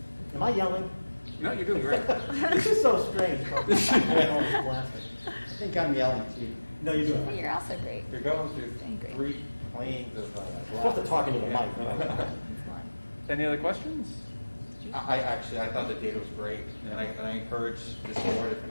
Am I yelling? No, you're doing great. This is so strange. I think I'm yelling, Steve. No, you're doing it. You're also great. You're going through Doing great. 3 planes of You're supposed to talk into the mic. It's fun. Any other questions? I thought the data was great, and I encourage this board, if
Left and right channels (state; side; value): inverted; both; correlation -1.00